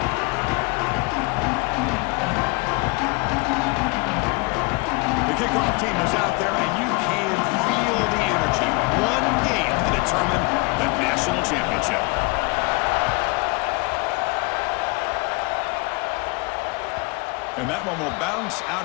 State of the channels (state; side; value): quieter; right; 28.0 dB